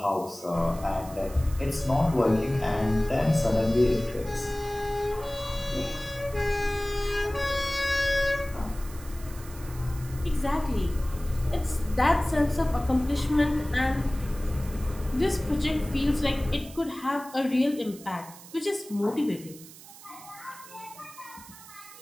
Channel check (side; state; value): right; noise; hiss, 18 dB below the sound